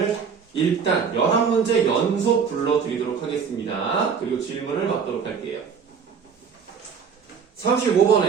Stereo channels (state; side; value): quieter; left; 6.4 dB